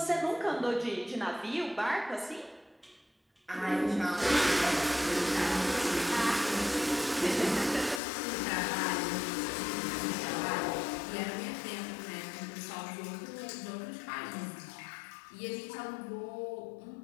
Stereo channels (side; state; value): right; drops out; at 8.0 s